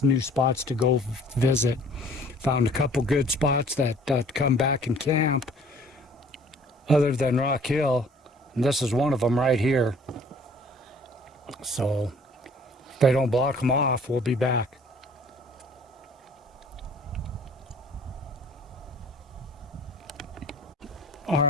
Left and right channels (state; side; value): normal; both; correlation 0.53